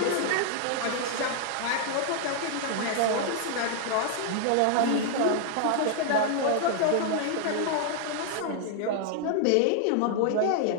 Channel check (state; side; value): different; both; correlation 0.00